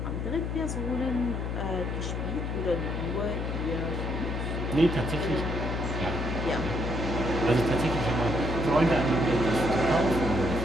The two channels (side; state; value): left; noise; hum, 2 dB below the sound